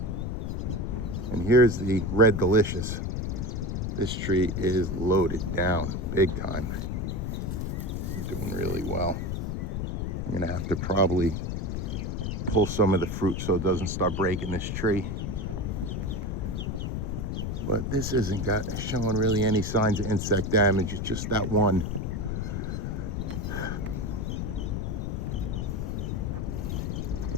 And here's the Red Delicious. This tree is loaded down big time. It's doing really well. I'm gonna have to probably pull some of the fruit so it doesn't start breaking this tree. But this isn't showing really any signs of insect damage. It's just that one.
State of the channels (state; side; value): noise; left; rumble, 2 dB below the sound